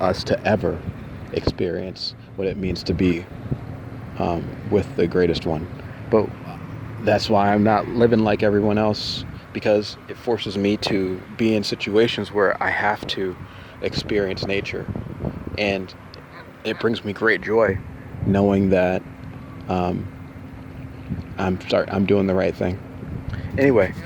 to ever experience what it means to be with the greatest one. But that's why I'm not living like everyone else, because it forces me to be in situations where I have to experience nature. And it brings me great joy knowing that I'm doing the right thing. Anyway,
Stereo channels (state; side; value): identical; both; correlation 1.00